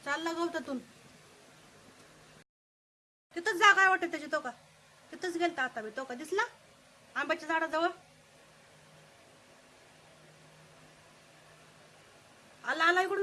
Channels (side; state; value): both; identical; correlation 1.00